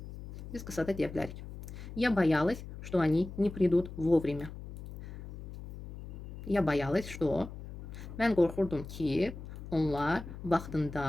Biz qısa da deyə bilərik. Я боялась, что они не придут вовремя. Я боялась, что... Mən qorxurdum ki, onlar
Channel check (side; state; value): left; noise; hum, 12 dB below the sound